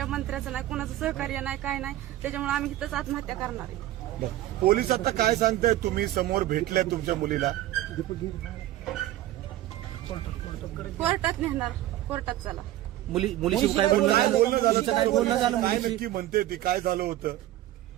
मंत्र्याचं नाही, कुणाचं सहकार्य नाही, काय नाही. त्याच्यामुळे आम्ही इथंच आत्महत्या करणार आहे. पोलीस आता काय सांगताय? तुम्ही समोर भेटल्या तुमच्या मुलीला? कोर्टात नेणार, कोर्टात चला. मुलीशी काय बोलणं झालं? काय नक्की म्हणते ती? काय झालं होतं?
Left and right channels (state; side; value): quieter; left; 14.6 dB